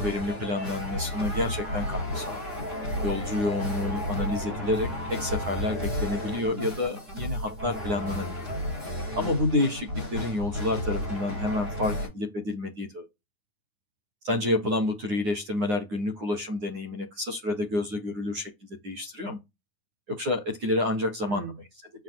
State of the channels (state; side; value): late; left; 9.7 ms